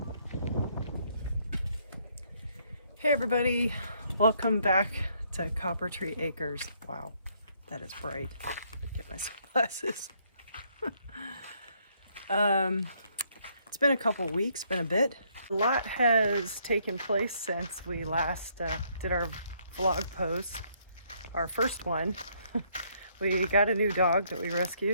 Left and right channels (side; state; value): both; inverted; correlation -0.69